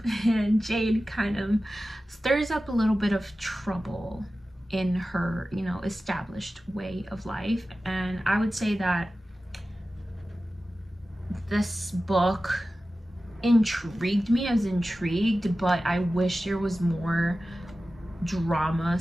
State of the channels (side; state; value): both; normal; correlation 0.95